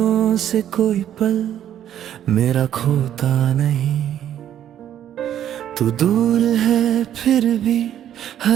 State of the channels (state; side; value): quieter; left; 10.7 dB